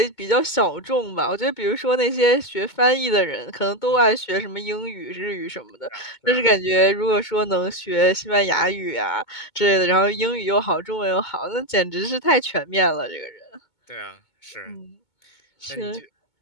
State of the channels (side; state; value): right; late; 2.2 ms